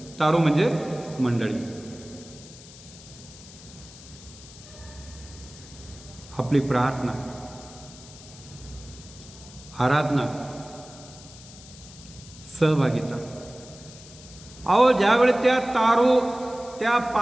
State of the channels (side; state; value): left; noise; hiss, 19 dB below the sound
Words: तारू म्हणजे मंडळी. आपली प्रार्थना, आराधना, सहभागिता. अहो, ज्यावेळी त्या तारू त्या